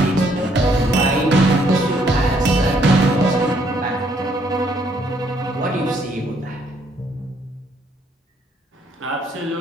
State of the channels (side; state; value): both; normal; correlation 0.68